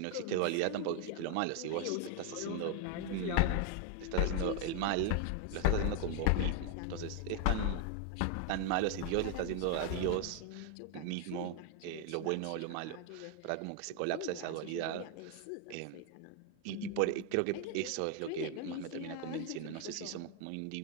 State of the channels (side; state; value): both; different; correlation 0.01